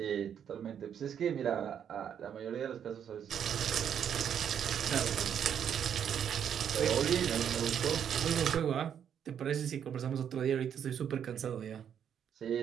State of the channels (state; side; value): quieter; left; 8.6 dB